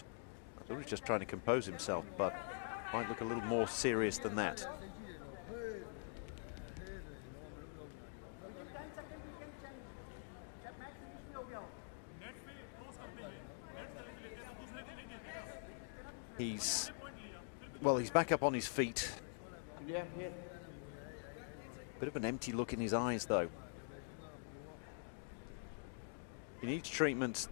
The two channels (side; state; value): right; silent; digital silence